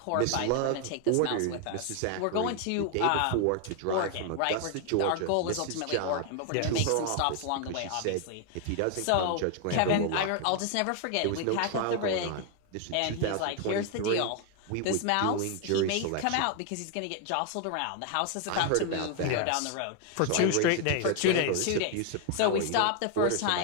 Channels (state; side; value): different; both; correlation 0.00